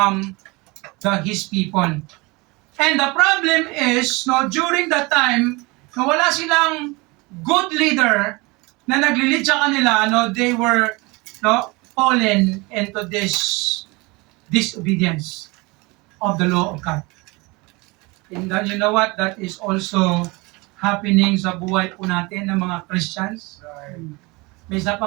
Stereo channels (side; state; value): left; quieter; 25.3 dB